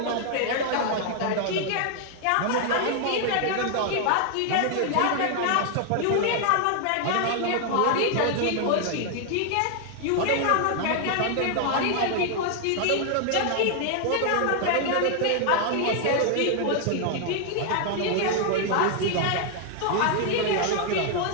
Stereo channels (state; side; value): different; both; correlation 0.00